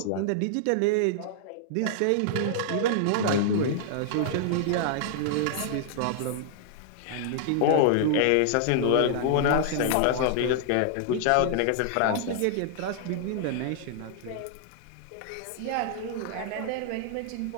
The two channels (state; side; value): different; both; correlation -0.01